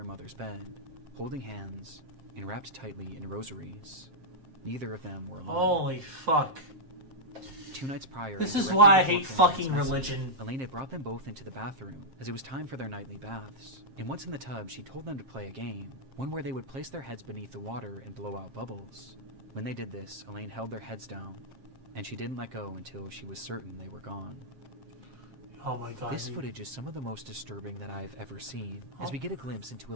mother's bed, holding hands, and wrapped tightly in rosaries. Neither of them were alive. Holy fuck. 2 nights prior, This and is directly why I before hate filming fucking this message, religion. Elaine had brought them both into the bathroom, as it was time for their nightly baths. And once in the tub, she told them to play a game, one where they would place their heads beneath the water and blow out bubbles. When they did this, Elaine held their heads down, and she didn't let go until she was certain they were gone. Oh my God. This footage is some of the most disturbing that I've ever seen, as we get a glimpse into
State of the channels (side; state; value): left; late; 7.5 ms